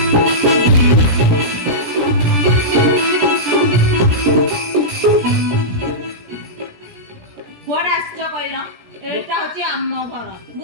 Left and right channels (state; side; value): late; left; 17 ms